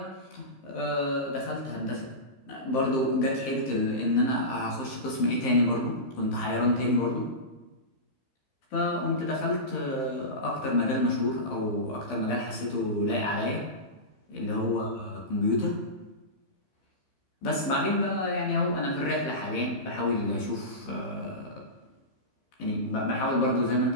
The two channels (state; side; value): late; right; 15 ms